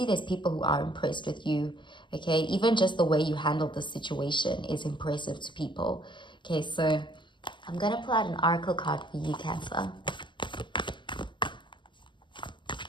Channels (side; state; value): right; late; 0.23 ms